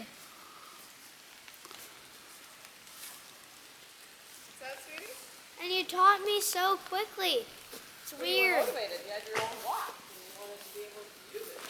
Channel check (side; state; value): both; identical; correlation 1.00